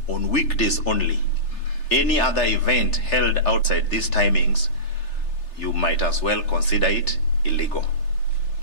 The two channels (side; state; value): right; late; 3.3 ms